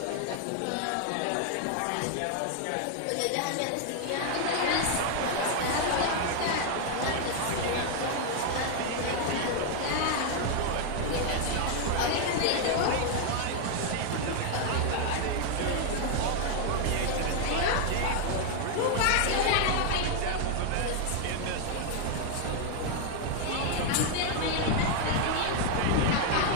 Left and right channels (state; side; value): different; both; correlation 0.00